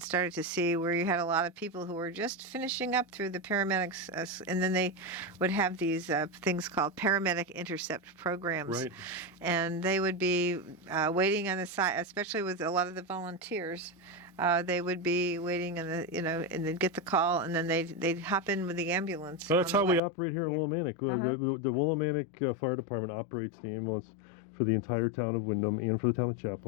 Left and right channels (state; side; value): drops out; right; at 20.0 s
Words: started to see where you had a lot of people who were just finishing up through the paramedics, and then they would have these things called paramedic intercept programs, Right. and they would be waiting on the side, especially with a lot of the volunteers. They would be waiting, and they'd get the call, and then they'd hop in with the ambulance. Well, that's how we way. operate here in Willimantic. The Willimantic Fire Department operates the ambulance for the entire town of Windham and for the town of